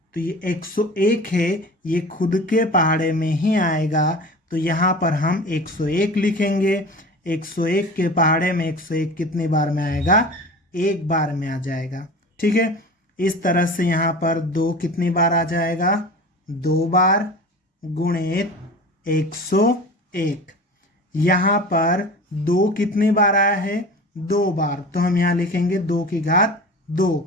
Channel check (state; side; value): normal; both; correlation 0.36